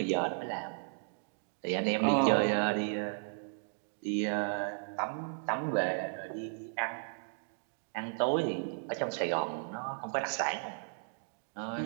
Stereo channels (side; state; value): left; silent; digital silence